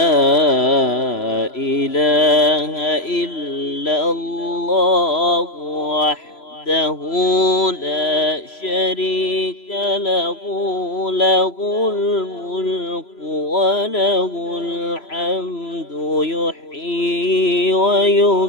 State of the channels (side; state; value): right; late; 3.0 ms